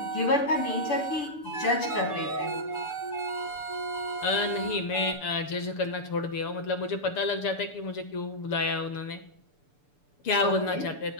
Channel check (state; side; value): late; right; 6.9 ms